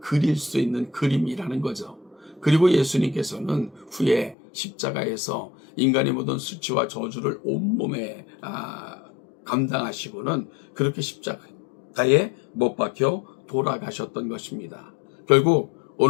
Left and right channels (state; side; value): drops out; right; at 4.4 s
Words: 수 있는 그림이라는 거죠. 그리고 예수님께서는 후에 십자가에서 인간의 모든 수치와 저주를 온몸에 감당하시고는 그렇게 십자가에 못 박혀 돌아가셨던 것입니다. 결국